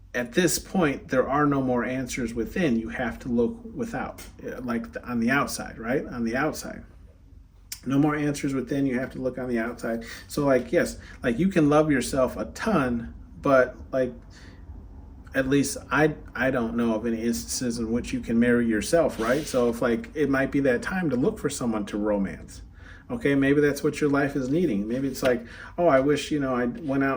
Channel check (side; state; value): both; identical; correlation 1.00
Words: at this point, there are no more answers within. You have to look without, like on the outside, right? On the outside. No more answers within. You have to look on the outside. So like, yes, like you can love yourself a ton, but like, at least I don't know of any instances in which you can marry yourself, right? So if like, it might be that time to look for someone to romance. Okay, maybe that's what your life is needing. Maybe it's like, oh, I wish, I went